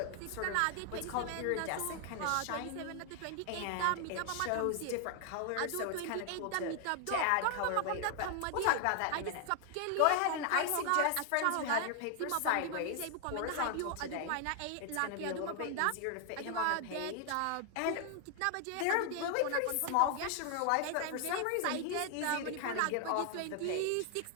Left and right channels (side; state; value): both; different; correlation 0.00